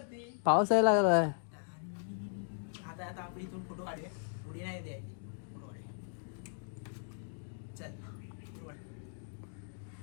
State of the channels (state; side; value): silent; right; digital silence